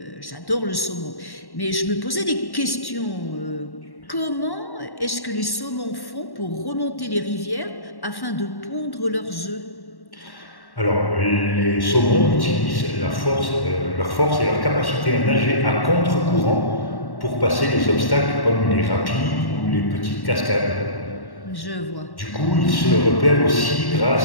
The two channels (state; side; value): late; right; 1.1 ms